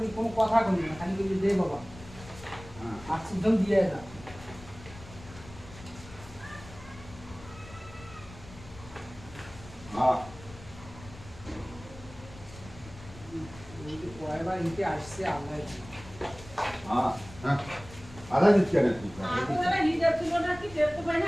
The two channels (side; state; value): left; noise; rumble, 18 dB below the sound